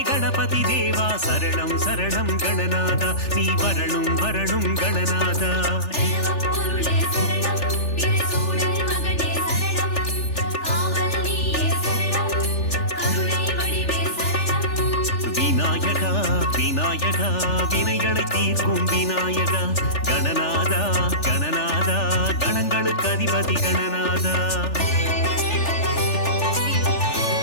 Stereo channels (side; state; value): right; late; 3.4 ms